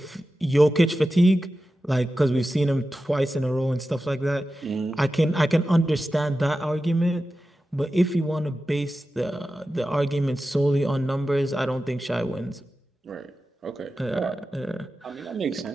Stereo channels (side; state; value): both; normal; correlation 0.93